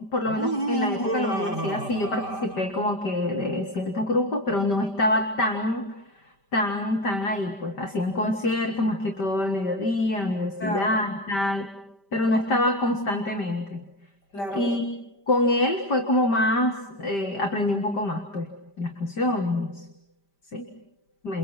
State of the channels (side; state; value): right; late; 5.1 ms